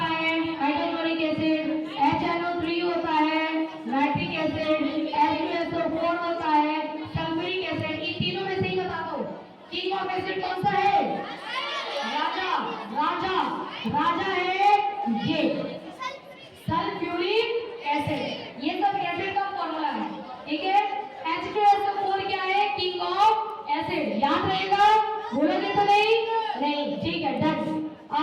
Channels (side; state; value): both; identical; correlation 1.00